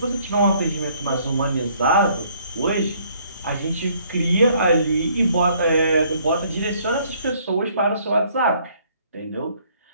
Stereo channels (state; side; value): inverted; both; correlation -0.63